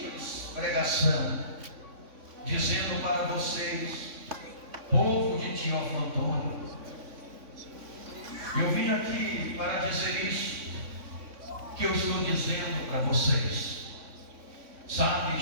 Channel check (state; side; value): late; left; 3.6 ms